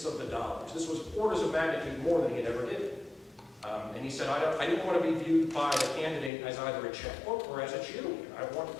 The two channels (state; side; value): drops out; right; at 6.3 s